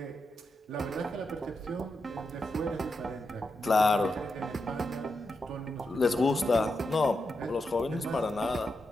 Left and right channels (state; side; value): normal; both; correlation 0.86